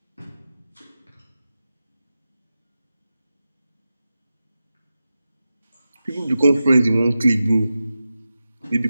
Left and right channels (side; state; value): both; inverted; correlation -0.92